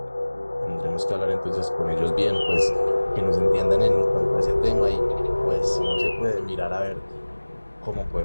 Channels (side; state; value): both; inverted; correlation -1.00